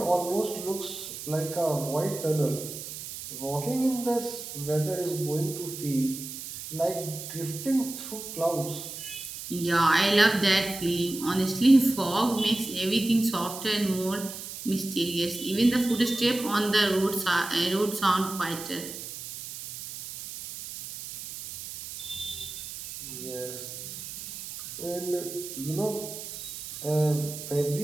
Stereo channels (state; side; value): noise; right; hiss, 10 dB below the sound